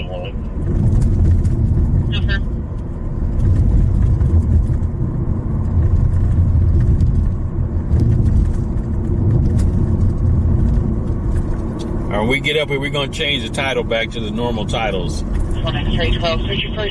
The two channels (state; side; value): identical; both; correlation 1.00